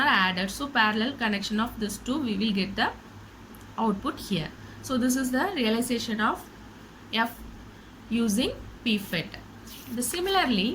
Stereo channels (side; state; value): both; identical; correlation 1.00